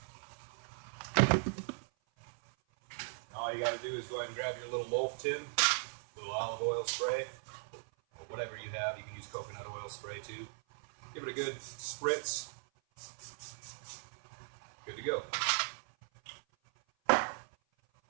All you got to do is go ahead and grab your little loaf tin, little olive oil spray, or whatever you have. You can use coconut oil spray too. Give it a good spritz. Good to go.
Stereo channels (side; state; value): left; silent; 52 dB below the other